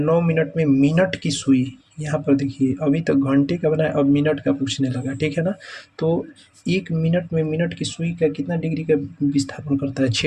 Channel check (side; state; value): both; identical; correlation 1.00